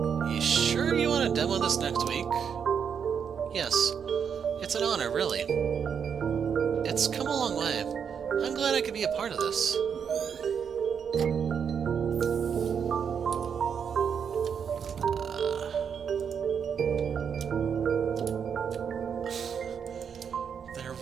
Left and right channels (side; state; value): left; quieter; 7.2 dB